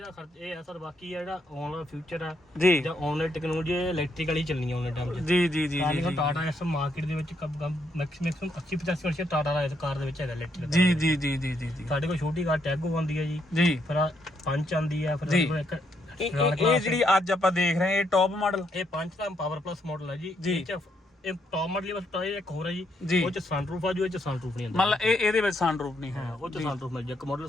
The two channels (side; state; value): both; normal; correlation 0.75